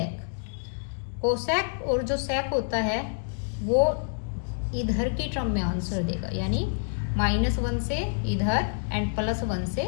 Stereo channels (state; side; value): silent; right; digital silence